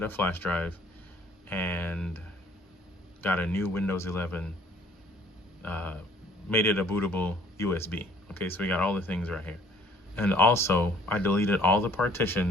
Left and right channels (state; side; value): normal; both; correlation 0.56